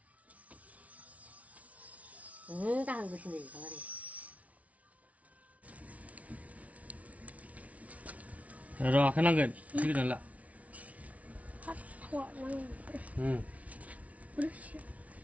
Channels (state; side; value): late; left; 0.067 ms